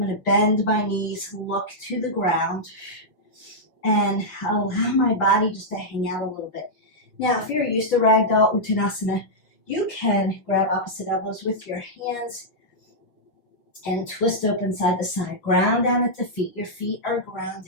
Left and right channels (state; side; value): late; right; 5.9 ms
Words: going to bend my knees, look to the ground, and allow my body just to hang out a little bit. Now, if you're used to ragdoll uttanasana, you can grab opposite elbows with your hands and twist open side to side. Ground down at the feet. Your feet are